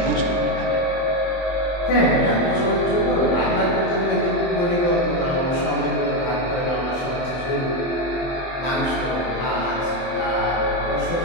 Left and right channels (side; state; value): right; late; 23 ms